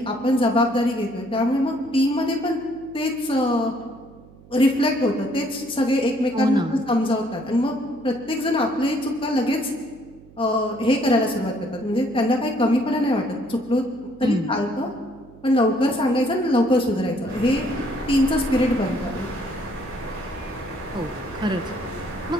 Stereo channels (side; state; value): right; noise; hum, 23 dB below the sound